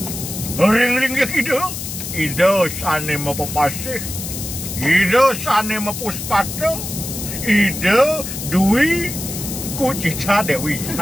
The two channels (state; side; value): noise; left; hiss, 7 dB below the sound